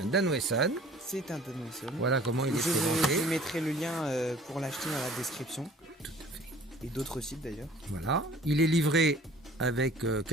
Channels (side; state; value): both; normal; correlation 0.50